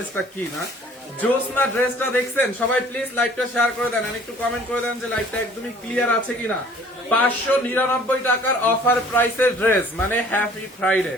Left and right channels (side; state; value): both; normal; correlation 0.53